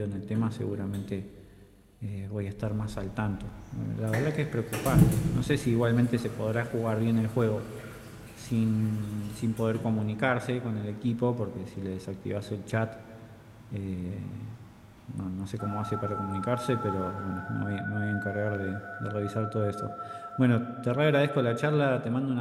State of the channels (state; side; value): identical; both; correlation 1.00